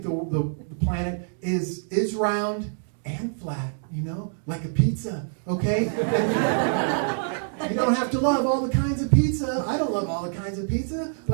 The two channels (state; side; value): silent; left; digital silence